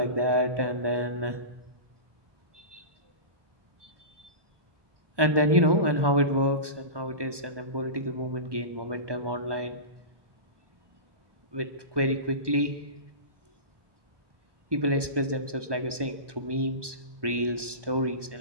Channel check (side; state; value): left; late; 1.2 ms